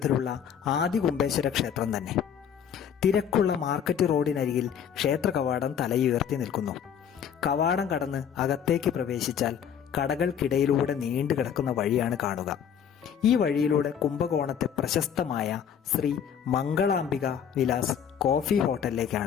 ആദികുംഭേശ്വര ക്ഷേത്രം തന്നെ. തിരക്കുള്ള മാർക്കറ്റ് റോഡിനരികിൽ ക്ഷേത്ര കവാടം തലയുയർത്തി നിൽക്കുന്നു. കവാടം കടന്ന് അകത്തേക്ക് പ്രവേശിച്ചാൽ കടകൾക്കിടയിലൂടെ നീണ്ടു കിടക്കുന്ന വഴിയാണ് കാണുക. ഈ വഴിയിലൂടെ കുംഭകോണത്തെ പ്രശസ്തമായ ശ്രീ മംഗളാംബിക വിലാസ് കോഫി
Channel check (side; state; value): right; quieter; 8.3 dB